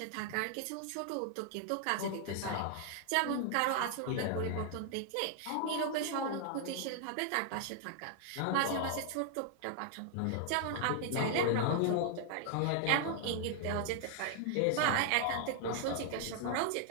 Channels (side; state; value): both; different; correlation 0.00